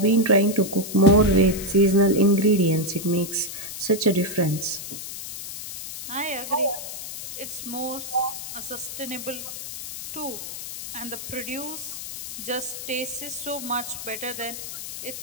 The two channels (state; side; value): noise; left; hiss, 9 dB below the sound